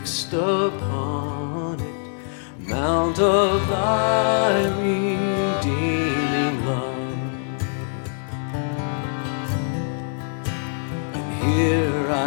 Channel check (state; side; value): silent; right; digital silence